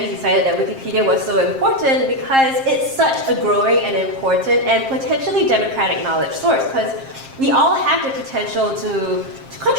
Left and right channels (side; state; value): left; late; 7.5 ms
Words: decided that Wikipedia was so important, because it's such a growing and important and potentially democratic knowledge source, because we all have the potential to